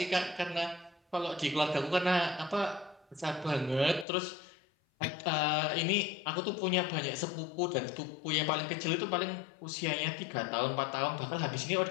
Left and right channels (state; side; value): drops out; right; at 4.0 s